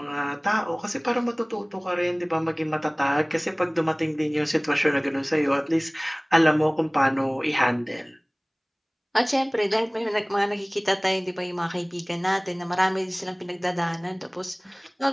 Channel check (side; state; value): both; identical; correlation 1.00